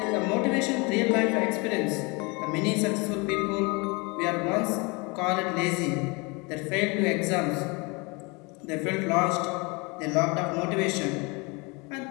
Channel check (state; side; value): quieter; right; 28.5 dB